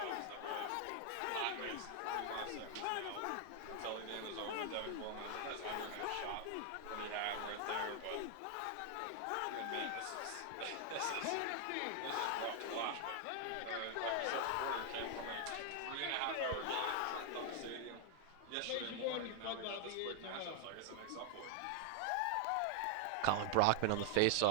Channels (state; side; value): different; both; correlation 0.00